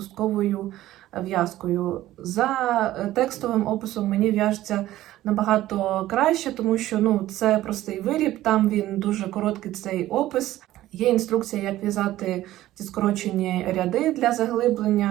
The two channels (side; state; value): left; quieter; 14.9 dB